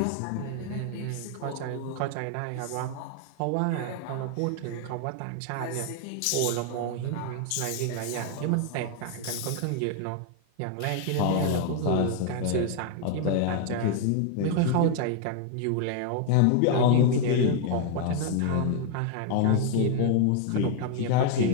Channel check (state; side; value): different; both; correlation 0.00